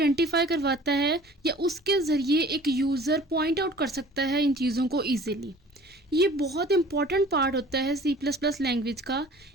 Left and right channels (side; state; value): both; normal; correlation 0.47